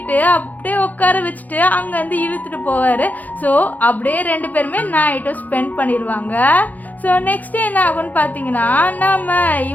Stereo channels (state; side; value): late; right; 0.081 ms